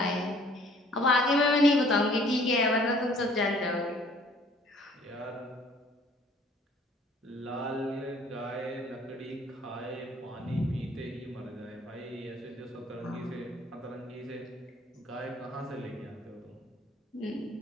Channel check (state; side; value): normal; both; correlation 0.56